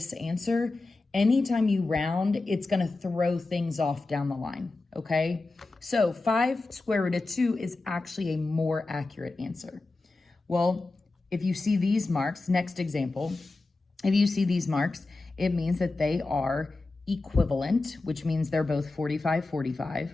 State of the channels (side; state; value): right; quieter; 3.3 dB